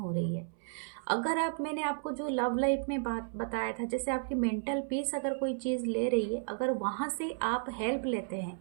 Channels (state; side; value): silent; left; 56 dB below the other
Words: रही है। अगर आप, मैंने आपको जो लव लाइफ में बात बताया था, जैसे आपकी मेंटल पीस अगर कोई चीज़ ले रही है, अगर वहाँ से आप हेल्प लेते हैं,